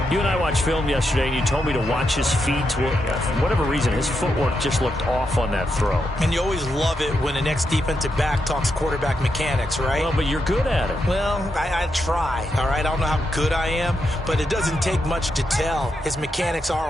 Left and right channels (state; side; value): normal; both; correlation 0.84